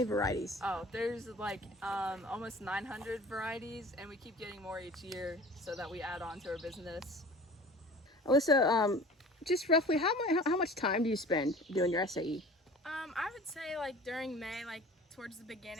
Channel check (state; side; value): normal; both; correlation 0.43